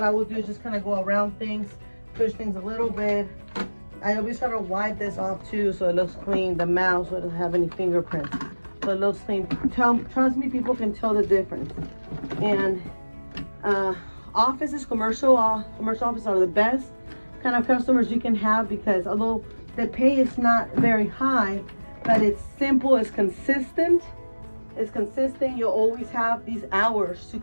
I will do is just kind of go around things, push things a little bit. I always try to wipe this off too, so it looks clean. The mouse, so it doesn't have any fingerprints. So it looks clean. Trust me, people can tell the difference. And offices, commercial offices are the best kind of customers you can have, because although the pay is not very high, but it's simple, it's consistent. You'll always have these hours to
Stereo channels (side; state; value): both; inverted; correlation -1.00